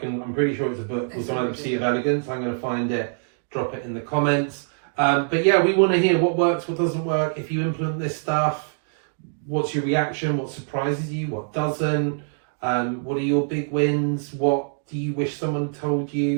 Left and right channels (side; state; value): left; silent; digital silence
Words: I'm pretty sure it's a book called The Sea of Elegance. I'm going to find it. Drop it in the comments. But yeah, we want to hear what works, what doesn't work. If you implement this stuff, what's your reaction? What surprises you? What doesn't? What are your big wins? What do you wish someone told